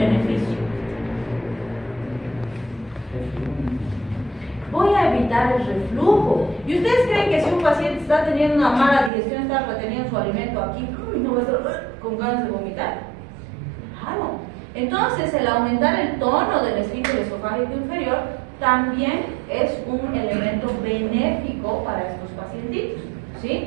Voy a evitar el reflujo. ¿Y ustedes creen que si un paciente está teniendo una mala digestión, está reteniendo su alimento aquí, no va a estar con ganas de vomitar? Claro. Entonces, el aumentar el tono del esfínter esofágico inferior también es un elemento benéfico para estos pacientitos,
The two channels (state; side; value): drops out; left; at 9.1 s